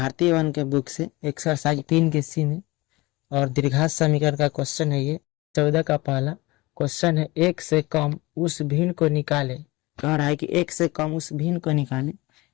वन के बुक से एक्सरसाइज 3 के सी में। और द्विघात समीकरण का क्वेश्चन है ये 14 का पहला क्वेश्चन है। एक से कम उस भिन्न को निकाले। कह रहा है कि एक से कम उस भिन्न को निकाले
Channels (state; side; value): quieter; right; 21.9 dB